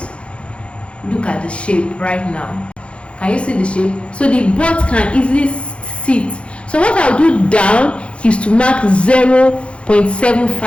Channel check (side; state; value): right; late; 0.060 ms